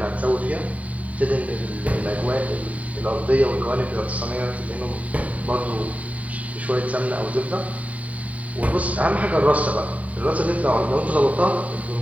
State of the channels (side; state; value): left; late; 0.069 ms